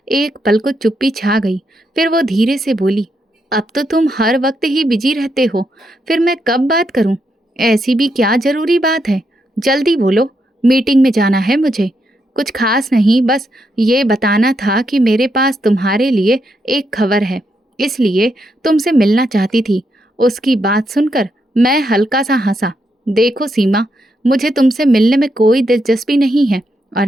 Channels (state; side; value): normal; both; correlation 0.80